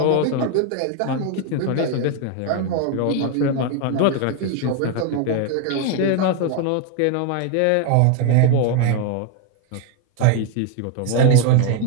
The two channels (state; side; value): different; both; correlation 0.01